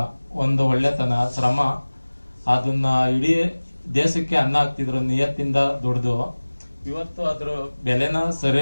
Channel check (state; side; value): inverted; both; correlation -1.00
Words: ಒಂದು ಒಳ್ಳೆತನ, ಶ್ರಮ, ಅದನ್ನ ಇಡೀ ದೇಶಕ್ಕೆ ಅನ್ನ ಹಾಕ್ತಿದ್ರು ನಿಯತ್ತಿಂದ ದುಡ್ದು. ಇವತ್ತು ಅದ್ರ ಬೆಲೆನ